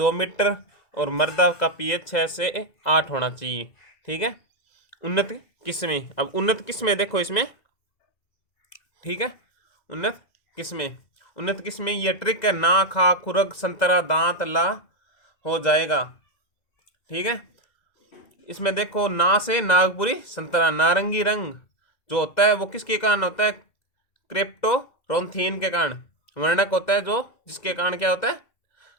मीटर और मृदा का pH 6 से 8 होना चाहिए। ठीक है, उन्नत किस्में। अब उन्नत किस्में देखो इसमें। ठीक है, उन्नत किस्में ये ट्रिक है, ना खा खुरग संतरा दांत ला हो जाएगा। ठीक है, इसमें देखो ना से नागपुरी संतरा, नारंगी रंग जो होता है वो किसके कारण होता है, क्रिप्टोरोंथीन के कारण। वर्णक होता है जो जिसके कारण क्या होता है,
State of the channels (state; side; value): late; right; 2.0 ms